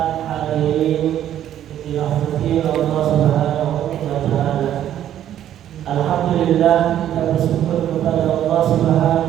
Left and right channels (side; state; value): left; quieter; 11.2 dB